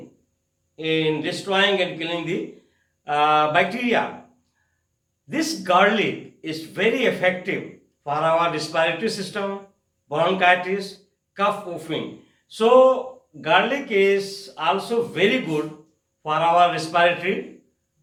in destroying and killing the bacteria. This garlic is very effective for our respiratory system, bronchitis, cough coughing. So garlic is also very good for our respiratory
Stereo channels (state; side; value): identical; both; correlation 1.00